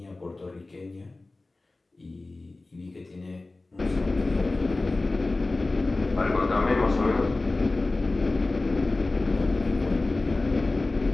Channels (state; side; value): quieter; right; 3.2 dB